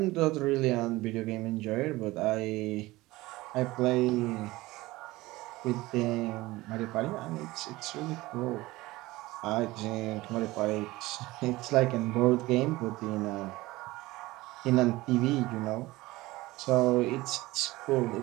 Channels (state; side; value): quieter; left; 19.4 dB